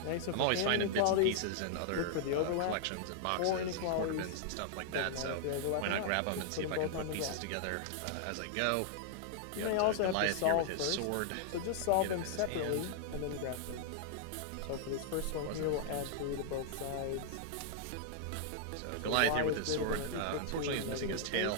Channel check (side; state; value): both; different; correlation -0.01